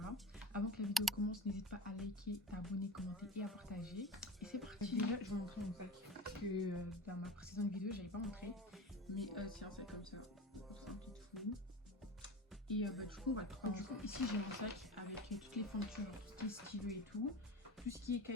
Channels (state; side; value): normal; both; correlation 0.31